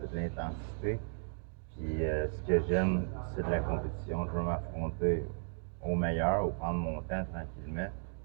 c'est de l'intensité. Puis ce que j'aime, c'est de la compétition. Je veux m'affronter au meilleur, ou prendre mon temps tranquillement,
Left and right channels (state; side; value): silent; left; 54 dB below the other